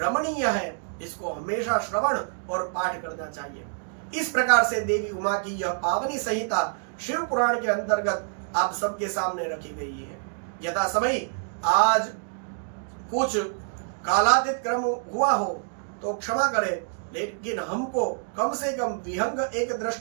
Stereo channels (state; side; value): silent; left; digital silence